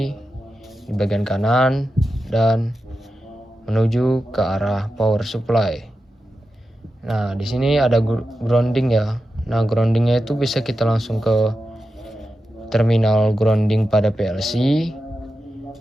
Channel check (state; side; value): normal; both; correlation 0.90